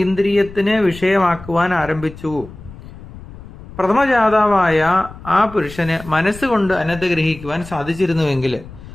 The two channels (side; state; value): left; noise; rumble, 16 dB below the sound